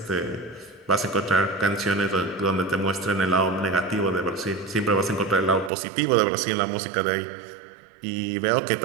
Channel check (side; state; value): left; drops out; at 5.7 s